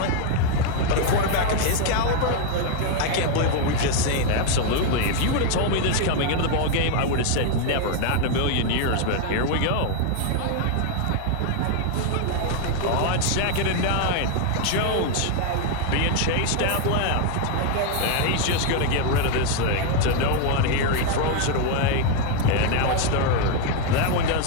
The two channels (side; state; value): both; different; correlation 0.00